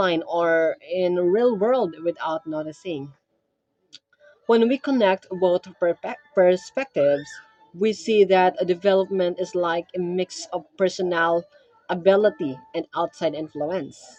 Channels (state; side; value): identical; both; correlation 1.00